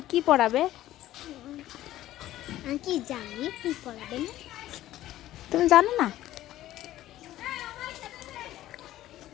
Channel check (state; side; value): quieter; right; 14.2 dB